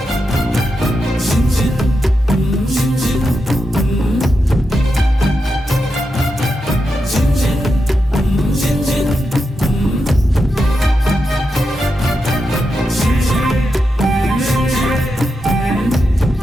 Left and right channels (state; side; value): normal; both; correlation 0.87